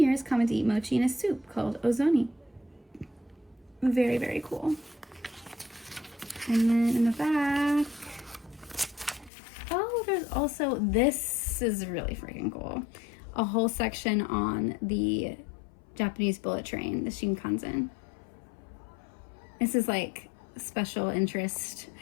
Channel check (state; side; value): drops out; right; at 9.3 s